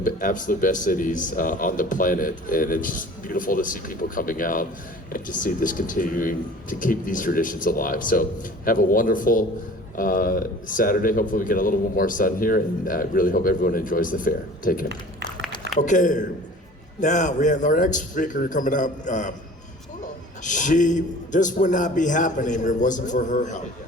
the absolute best cities on the planet. And it's just beautiful to see people coming out and to see this continuing to keep these traditions alive. So have a wonderful Saturday. Hopefully we get a little bit more sun here, and I really hope everyone enjoys the fair. Take care. Okay, now we have our next speaker coming up. This would not be happening if it wasn't for her help.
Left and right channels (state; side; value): normal; both; correlation 0.45